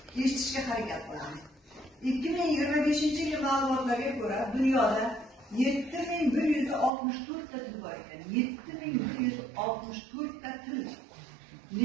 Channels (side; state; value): left; drops out; at 6.9 s